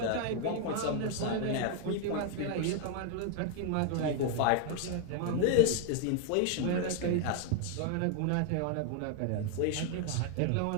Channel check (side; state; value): both; different; correlation 0.00